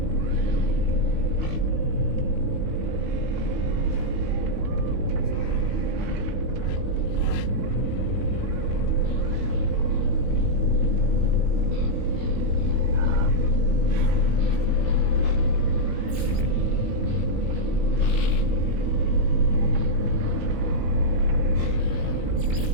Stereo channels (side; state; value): left; late; 19 ms